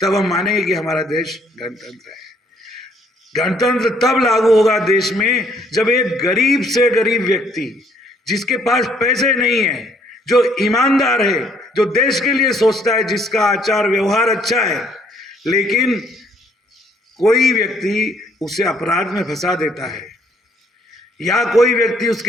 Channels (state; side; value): normal; both; correlation 0.65